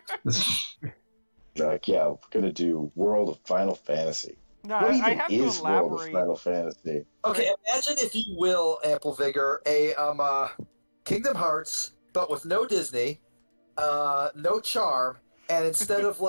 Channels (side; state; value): both; inverted; correlation -1.00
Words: like yeah, we're gonna do World of Final Fantasy. No, What I even have to is World of elaborate. Final Fantasy? Okay, imagine if you will, Ample Vigor, a Kingdom Hearts, but with no Disney, no charm, and instead of